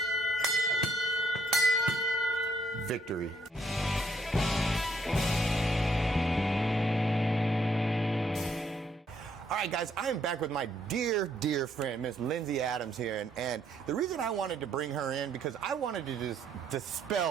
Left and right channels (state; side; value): normal; both; correlation 0.70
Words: Victory. All right, guys, I am back with my dear, dear friend, Miss Lindsay Adams here. And the reason I wanted to bring her in, because I wanted to just